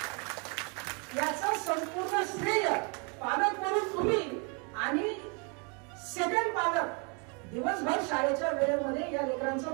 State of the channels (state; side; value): quieter; left; 34.7 dB